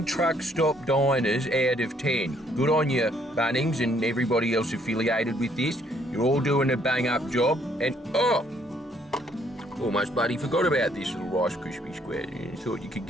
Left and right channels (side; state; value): both; normal; correlation 0.67